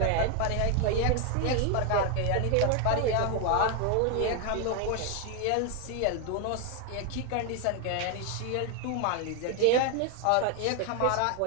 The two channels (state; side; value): different; both; correlation 0.00